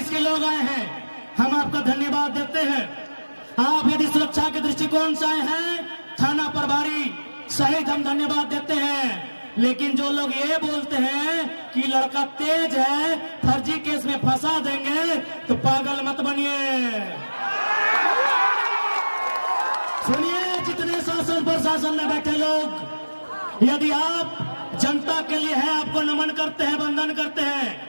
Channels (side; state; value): both; inverted; correlation -1.00